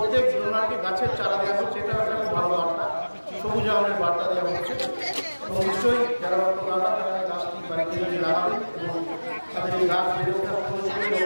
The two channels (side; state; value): both; inverted; correlation -1.00